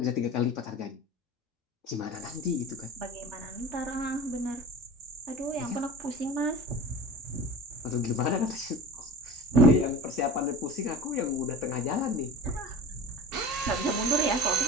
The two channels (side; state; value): both; normal; correlation 0.37